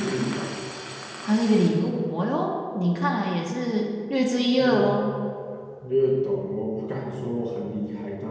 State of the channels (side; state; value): both; identical; correlation 1.00